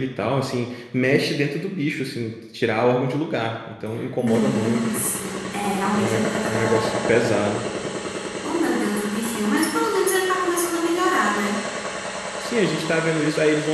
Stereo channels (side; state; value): both; identical; correlation 1.00